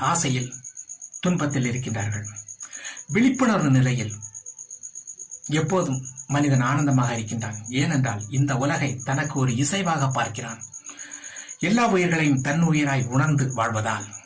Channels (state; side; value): identical; both; correlation 1.00